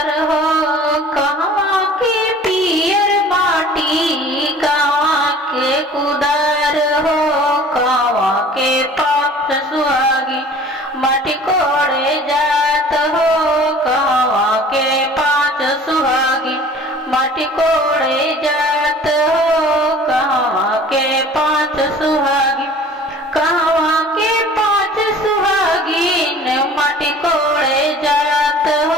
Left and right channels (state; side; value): normal; both; correlation 0.47